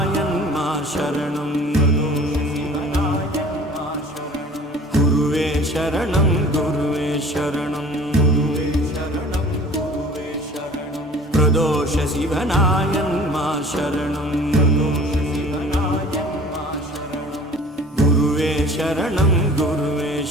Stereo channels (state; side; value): normal; both; correlation 0.47